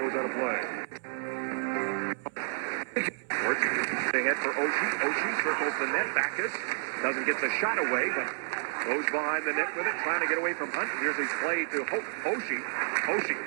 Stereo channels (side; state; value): left; silent; 58 dB below the other